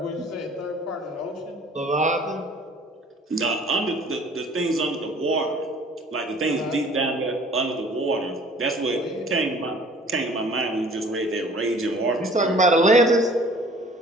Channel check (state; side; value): normal; both; correlation 0.51